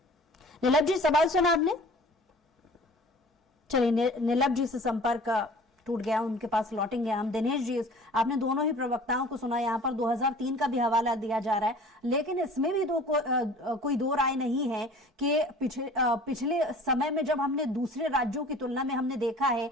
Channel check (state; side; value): normal; both; correlation 0.46